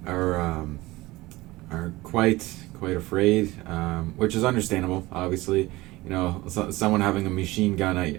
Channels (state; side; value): quieter; left; 19.8 dB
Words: quite afraid, which is understandable. Obviously, someone having a machine gun